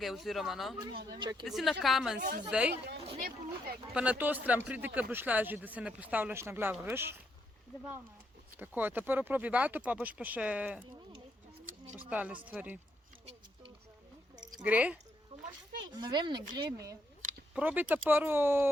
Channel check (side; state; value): both; normal; correlation 0.77